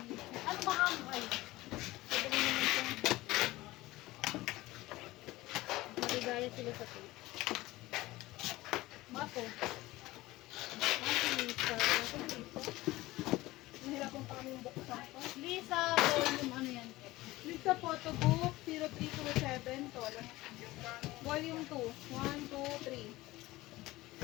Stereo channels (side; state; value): right; quieter; 18.7 dB